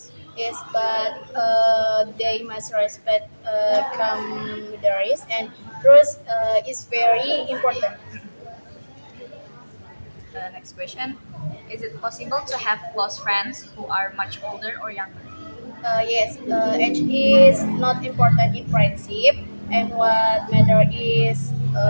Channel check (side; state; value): both; inverted; correlation -1.00